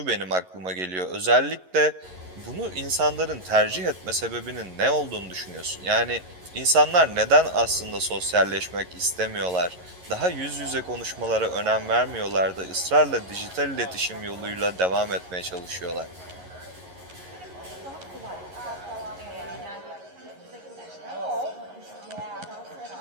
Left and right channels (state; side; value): late; left; 11 ms